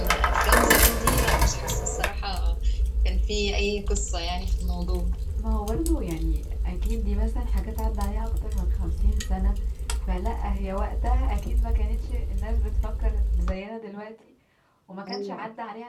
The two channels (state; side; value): identical; both; correlation 1.00